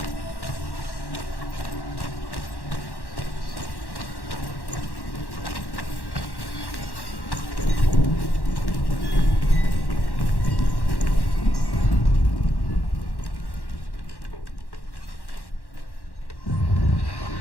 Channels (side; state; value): right; late; 1.1 ms